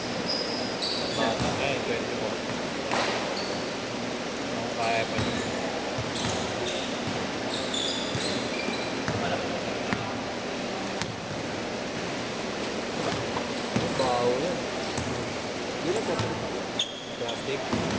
Bata, eh, 24. Ako kaya pa yun. Bawo yan. Hindi na papalitan. Plastic.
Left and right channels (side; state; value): left; noise; rumble, 23 dB below the sound